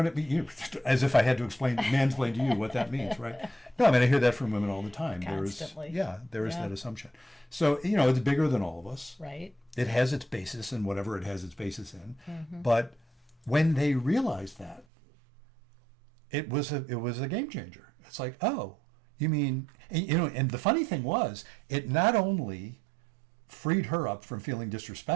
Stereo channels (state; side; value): drops out; left; at 14.9 s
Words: it means? As if I had to mansplain to you what that means, right? No, I hear that from women all the time. Constantly. There is that assumption. So, it's bigger than all of us. Right. It has its basis in whatever it has its basis in. But when they realized that, it was a game changer. It's like, oh, you mean, and the funny thing was, it not only freed her up from feeling